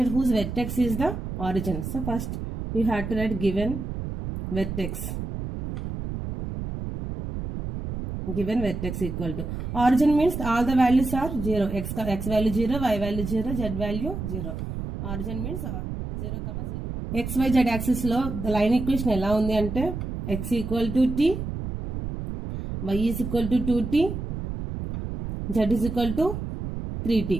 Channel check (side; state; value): right; noise; rumble, 6 dB below the sound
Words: whose vertex is the origin. So first you have to write given vertex. Given vertex equal to origin means all the values are 0. X value 0, y value 0, z value 0. Origin means 0, 0. X, y, z axis లో the line equation ఎలా ఉంది అంటే x equal to t, y is equal to 2t, z is equal to